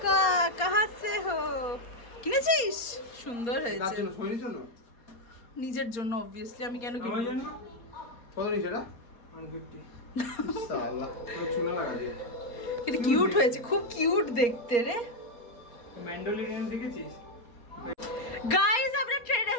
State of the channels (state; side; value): late; right; 4.3 ms